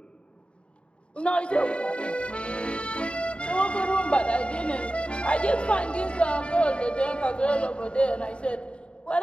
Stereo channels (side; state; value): right; late; 0.056 ms